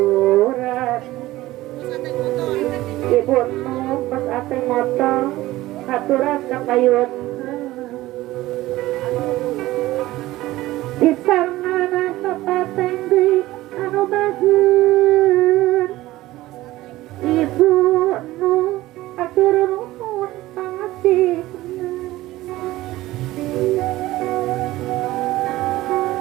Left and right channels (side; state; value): left; quieter; 17.1 dB